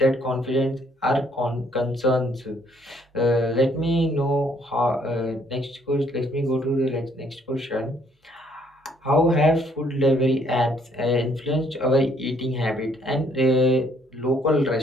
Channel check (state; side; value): normal; both; correlation 0.66